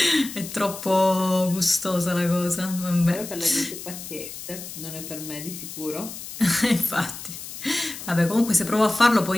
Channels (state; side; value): noise; left; hiss, 11 dB below the sound